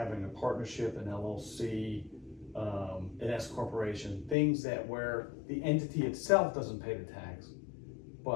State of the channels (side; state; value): right; drops out; at 4.4 s